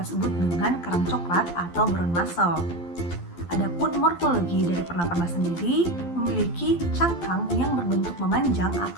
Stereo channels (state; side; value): late; right; 12 ms